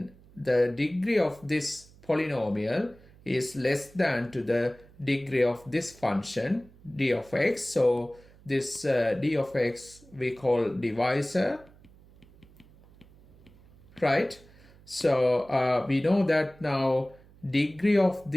the degree of this polynomial is less than to the degree of this function, d of x. So this d of x we call divisor, right? So we know that now degree of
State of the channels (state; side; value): noise; right; hum, 25 dB below the sound